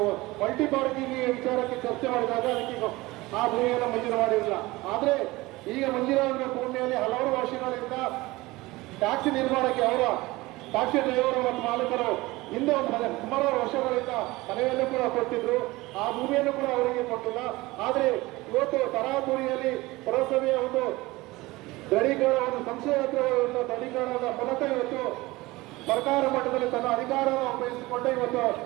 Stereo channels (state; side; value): quieter; left; 20.5 dB